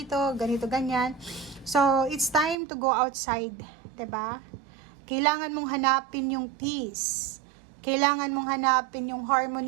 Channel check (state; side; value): drops out; left; at 2.6 s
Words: ganito, ganyan. So, it's time to go outside. 'Di ba? Kailangan mong hanapin yung peace. Kailangan mong hanapin yung